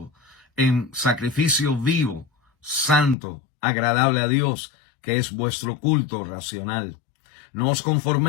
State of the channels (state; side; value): drops out; right; at 3.2 s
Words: en sacrificio vivo, santo, agradable a Dios, que es vuestro culto racional. No os